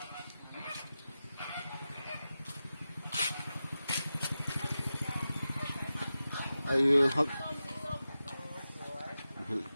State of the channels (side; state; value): both; inverted; correlation -0.93